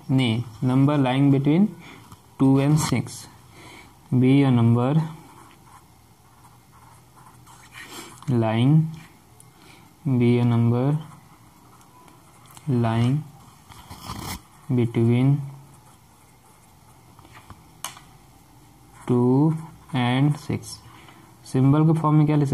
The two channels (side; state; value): both; identical; correlation 1.00